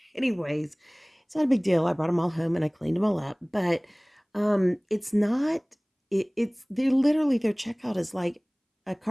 anyways, it's not a big deal. I brought them all home and I cleaned them all up. But it's not, they're literally, their checkout is like a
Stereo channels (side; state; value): both; identical; correlation 1.00